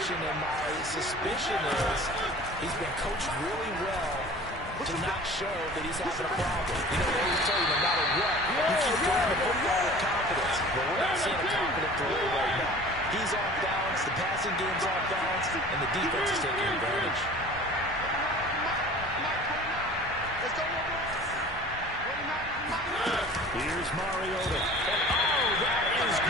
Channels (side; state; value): both; normal; correlation 0.43